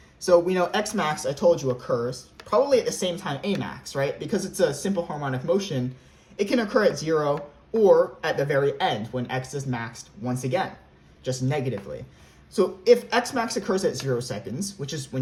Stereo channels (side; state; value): both; identical; correlation 1.00